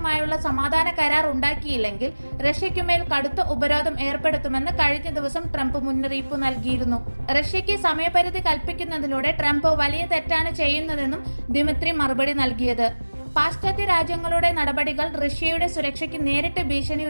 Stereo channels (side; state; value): both; inverted; correlation -1.00